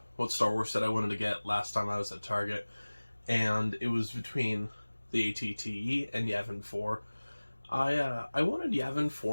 what Star Wars set I wanted to get last time I was at Target, and it was between the AT-TE and Yavin 4. I wanted Yavin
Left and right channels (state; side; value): inverted; both; correlation -1.00